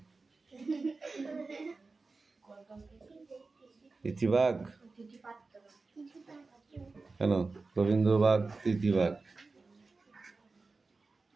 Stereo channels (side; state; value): left; quieter; 3.9 dB